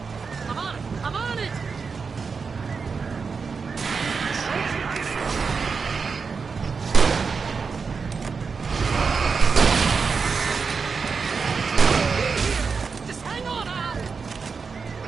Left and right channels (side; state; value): left; quieter; 5.2 dB